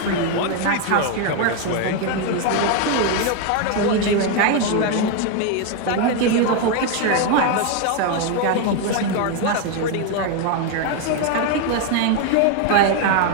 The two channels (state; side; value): different; both; correlation 0.01